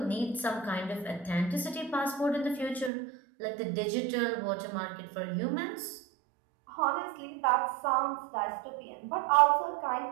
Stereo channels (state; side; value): drops out; left; at 2.9 s